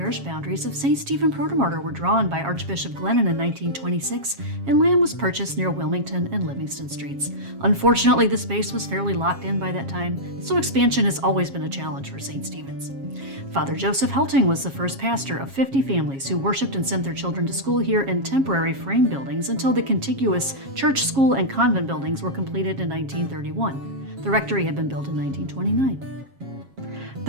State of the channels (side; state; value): left; late; 7.4 ms